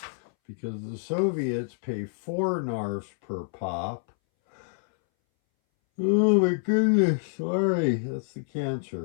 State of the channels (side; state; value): right; silent; 60 dB below the other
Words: because the Soviets pay 4 NARFs per pop. Oh my goodness, sorry, that's the